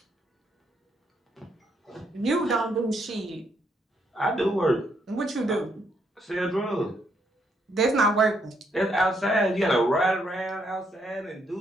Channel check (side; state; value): both; normal; correlation 0.74